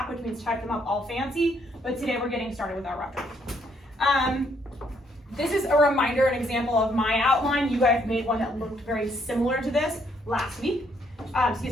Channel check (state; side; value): normal; both; correlation 0.70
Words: which means type them up all fancy, but today we're getting started with our rough draft. This is a reminder, an example of my outline. You guys made one that looked very similar to this last week. On